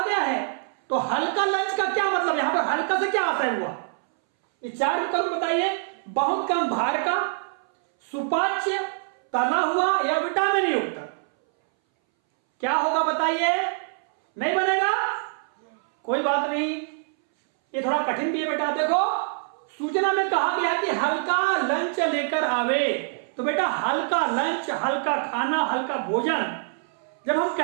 गया है। तो हल्का लंच का क्या मतलब? यहां पर हल्का से क्या आशय हुआ? ये 4 विकल्प बताइए। बहुत कम भार का, सुपाच्य, तला हुआ या विटामिन युक्त। क्या होगा बताइए? नहीं बनेगा? कोई बात नहीं, ये थोड़ा कठिन भी है बेटा। देखो, सूचना में कहा गया कि हल्का लंच लेकर आवे, तो बेटा हल्का लंच, हल्का खाना, हल्का भोजन जब हम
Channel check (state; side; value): silent; left; 61 dB below the other